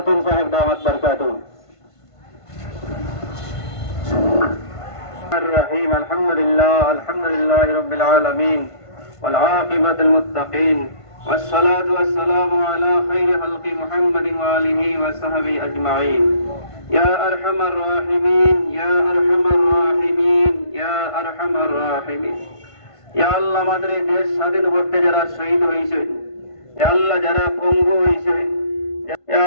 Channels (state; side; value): late; right; 1.5 ms